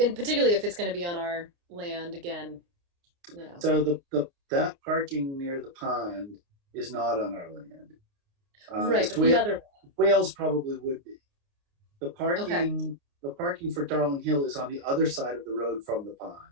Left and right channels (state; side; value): late; left; 29 ms